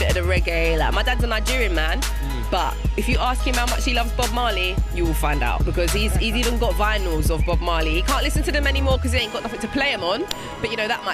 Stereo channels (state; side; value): identical; both; correlation 1.00